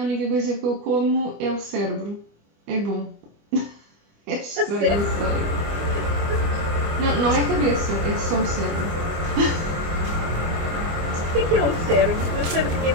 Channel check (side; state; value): left; late; 25 ms